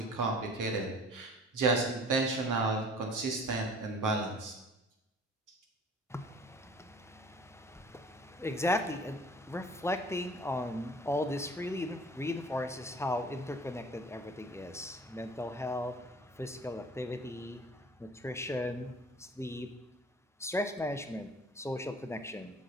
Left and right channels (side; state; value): both; normal; correlation 0.47